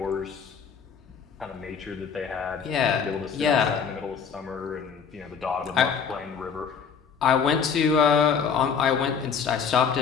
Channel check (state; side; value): quieter; right; 6.5 dB